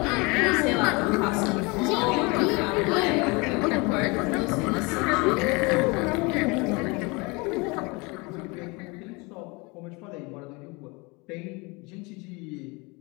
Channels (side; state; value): right; quieter; 27.2 dB